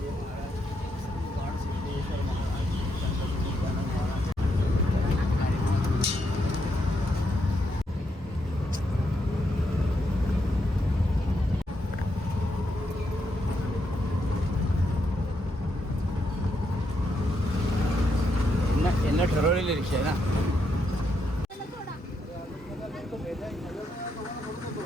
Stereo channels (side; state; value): both; normal; correlation 0.80